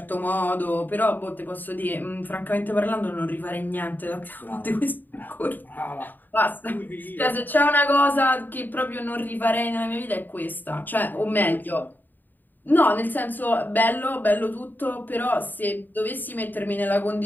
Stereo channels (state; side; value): late; right; 0.089 ms